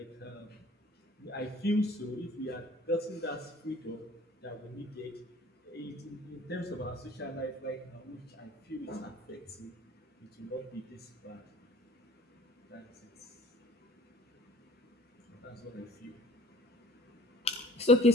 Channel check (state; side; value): normal; both; correlation 0.51